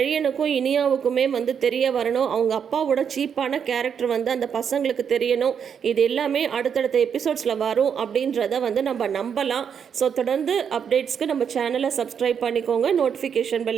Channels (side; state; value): left; quieter; 7.5 dB